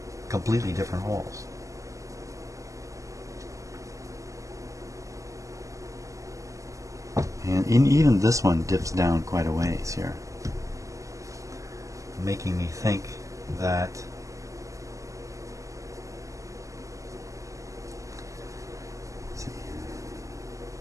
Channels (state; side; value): late; left; 0.16 ms